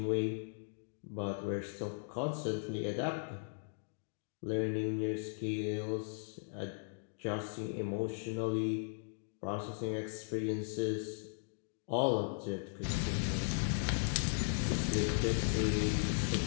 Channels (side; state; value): right; silent; digital silence